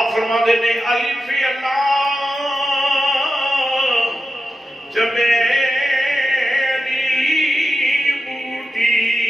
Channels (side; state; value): both; normal; correlation 0.91